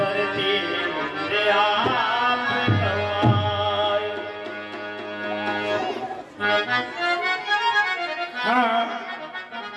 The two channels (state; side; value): identical; both; correlation 1.00